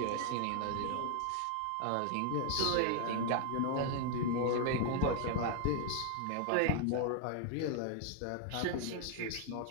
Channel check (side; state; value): both; different; correlation 0.00